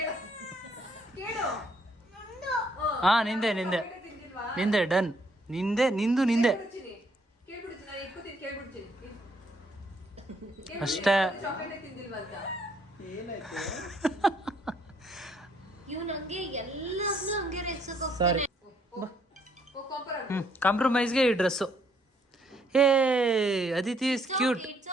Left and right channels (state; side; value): normal; both; correlation 0.68